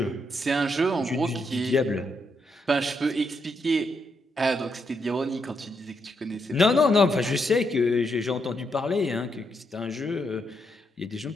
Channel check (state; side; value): normal; both; correlation 0.79